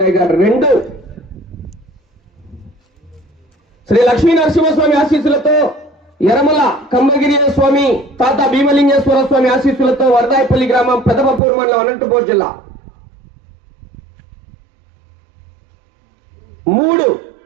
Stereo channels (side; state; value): left; drops out; at 11.4 s